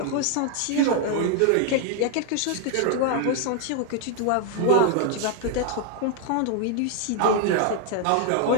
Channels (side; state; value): both; different; correlation 0.00